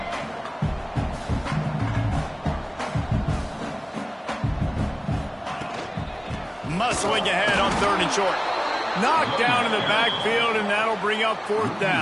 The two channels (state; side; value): identical; both; correlation 1.00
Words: Muscling ahead on third and short. Knocked down in the backfield, and that'll bring up fourth